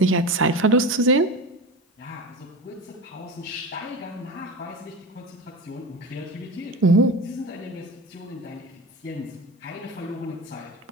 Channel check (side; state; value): both; normal; correlation 0.27